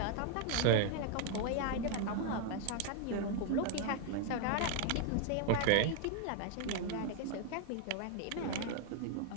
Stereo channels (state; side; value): different; both; correlation 0.00